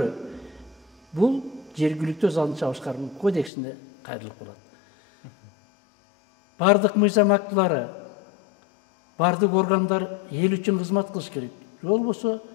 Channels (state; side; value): drops out; right; at 3.5 s